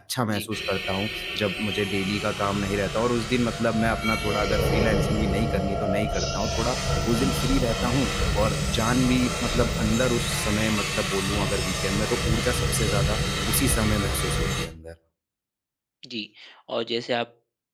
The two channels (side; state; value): both; identical; correlation 1.00